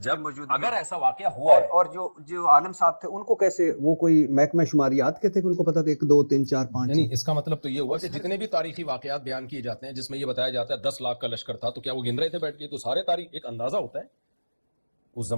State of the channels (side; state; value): both; inverted; correlation -1.00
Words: جب اگر ایسا واقعہ ہوا ہے، اور جو عالم صاحب تھے ان کو کیسے، وہ کوئی محکمہ شماریات کے تھے کہ ان کو پتا تھا 1 2 3 4 5؟ یعنی اس کا مطلب تو یہ ہوا کہ جتنے بھی تاریخی واقعات بیان کیے جاتے ہیں جس میں یہ بتایا جاتا ہے 10 لاکھ کا لشکر تھا، تو کیا وہ گن رہے تھے بیٹھ کے؟ تو سارے تاریخ ایک اندازہ ہوتا ہے، اس